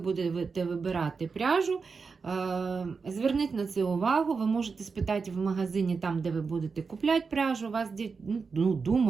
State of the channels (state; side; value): quieter; left; 5.0 dB